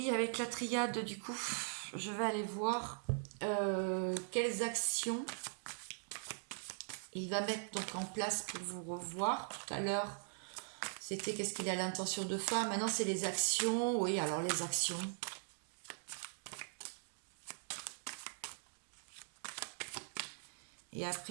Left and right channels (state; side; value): silent; left; digital silence